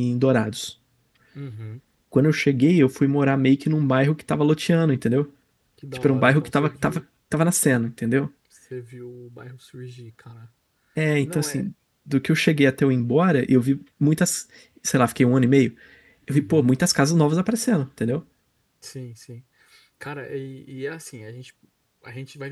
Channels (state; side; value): identical; both; correlation 1.00